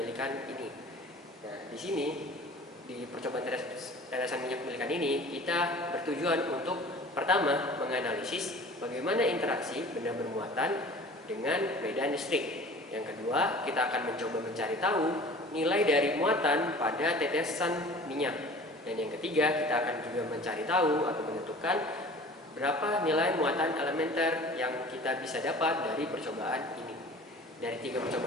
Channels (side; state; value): both; normal; correlation 0.44